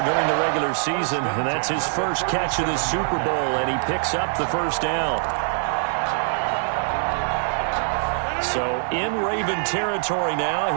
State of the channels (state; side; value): silent; left; 63 dB below the other